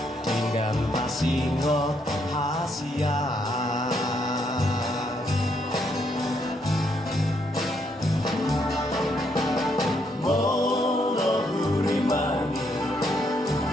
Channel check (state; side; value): normal; both; correlation 0.74